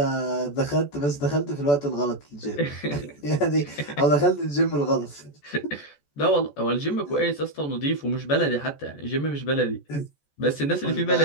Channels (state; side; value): late; right; 14 ms